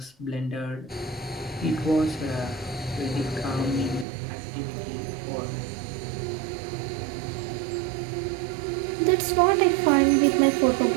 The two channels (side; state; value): left; drops out; at 4.0 s